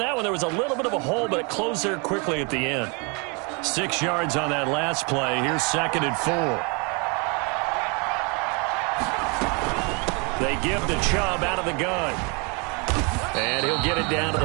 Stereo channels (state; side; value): quieter; left; 32.3 dB